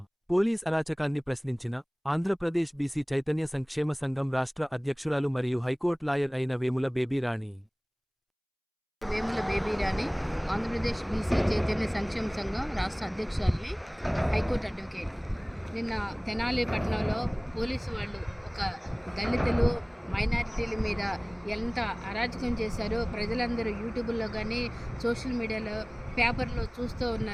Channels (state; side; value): identical; both; correlation 1.00